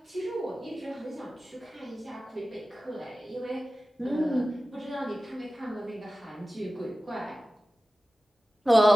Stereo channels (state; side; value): normal; both; correlation 0.96